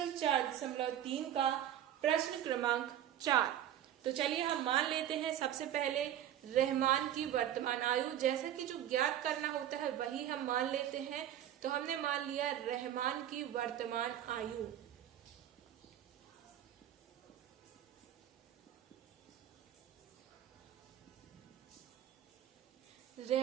4.3 का प्रश्न क्रमांक 4। तो चलिए हम मान लेते हैं सबसे पहले रहमान की वर्तमान आयु, जैसा कि जो ज्ञात करना होता है वही हम मान लेते हैं। तो हमने मान लिया रहमान की वर्तमान आयु।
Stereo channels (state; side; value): quieter; left; 11.3 dB